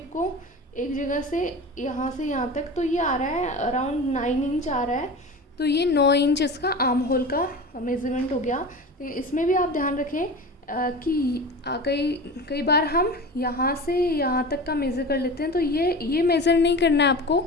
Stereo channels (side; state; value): both; normal; correlation 0.32